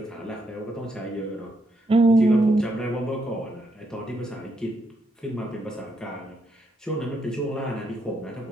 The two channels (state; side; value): normal; both; correlation 0.77